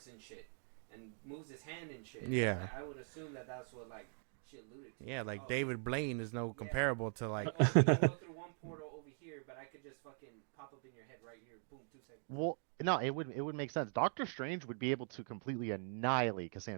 and shit, and moves his hand and shit. And Yeah. like, I would assume that that's what like she alluded to. Yeah, like oh, he- David Blaine is no Yeah. comparable to like. Like, oh, he can go through one portal over here, but I could just fucking pop up in your head right here. Boom, 2 seconds. well, no, it would make sense. Doctor Strange would be able to completely annihilate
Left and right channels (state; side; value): silent; left; 50 dB below the other